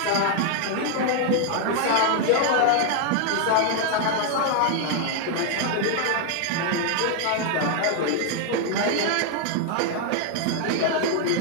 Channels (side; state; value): both; different; correlation 0.00